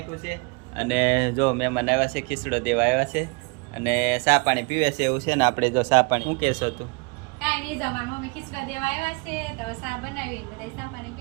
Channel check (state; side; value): quieter; left; 30.8 dB